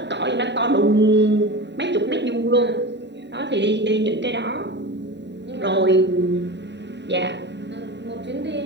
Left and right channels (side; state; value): left; late; 0.51 ms